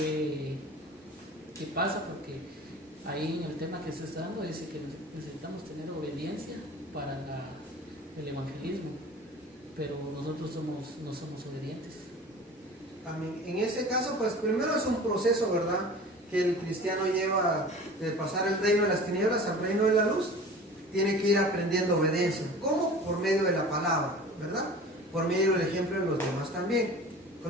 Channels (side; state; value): both; normal; correlation 0.40